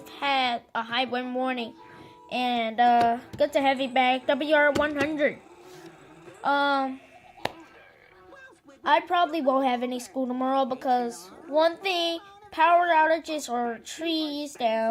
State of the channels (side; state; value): both; identical; correlation 1.00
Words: had a high wind warning, and good to have you back, WR100. I probably won't have any school tomorrow because one thing, power outages or trees